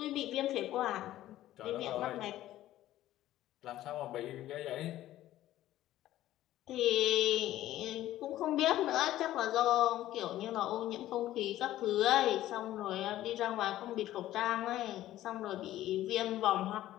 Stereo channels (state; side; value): quieter; right; 14.1 dB